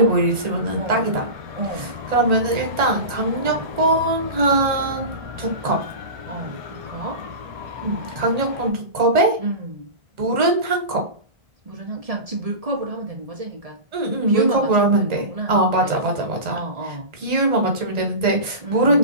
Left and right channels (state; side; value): late; left; 1.8 ms